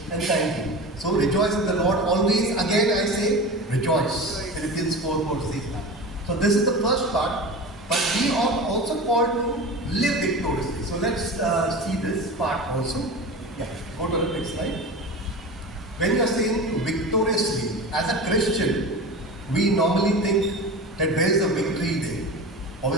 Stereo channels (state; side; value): normal; both; correlation 0.31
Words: and thanking. So rejoice in the Lord always. Again I say, rejoice. Philippians 4:4 says that. So this is the first part. But we are also called to live victoriously. So let's see this part also. Yeah, go to the next slide. When you are saying victoriously, as a Christian, we normally think that where is the victory there?